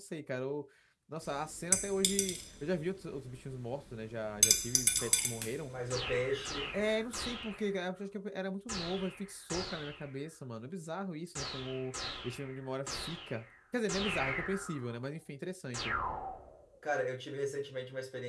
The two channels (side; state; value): both; identical; correlation 1.00